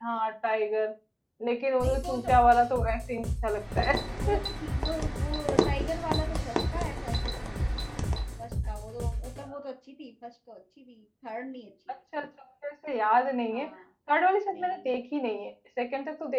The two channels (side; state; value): both; identical; correlation 1.00